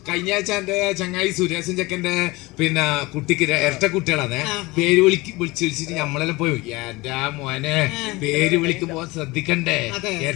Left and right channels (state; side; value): quieter; right; 22.2 dB